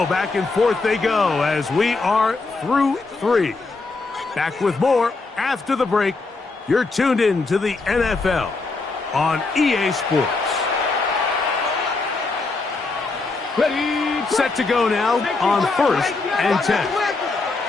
back and forth they go as we are through 3. Back with more after the break. You're tuned in to the NFL on EA Sports. Ready. Set to go now on first and 10.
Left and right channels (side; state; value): right; quieter; 3.7 dB